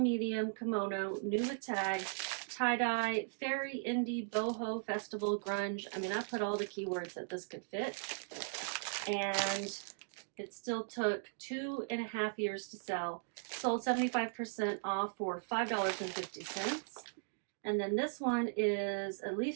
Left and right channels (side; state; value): left; silent; digital silence